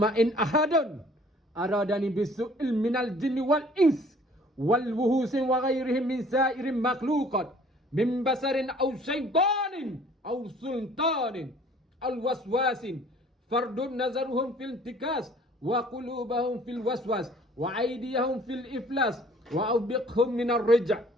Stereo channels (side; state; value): both; normal; correlation 0.54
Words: in ahadun aradani bisu'il minal jinni wal ins wal wuhusin wa ghairihim min sa'irin makhluqat min basarin aw syaitanin aw sultanin al waswasin fardun nazaruhum fil tikas wa qulubahum fil waswas wa aydiyahum fil iflas wa awbiqhum min ar-rija'